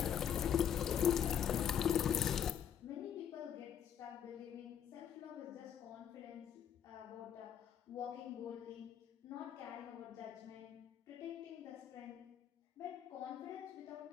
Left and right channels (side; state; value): right; quieter; 8.9 dB